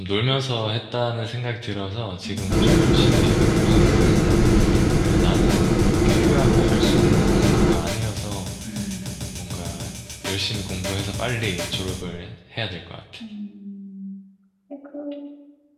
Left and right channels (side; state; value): both; identical; correlation 1.00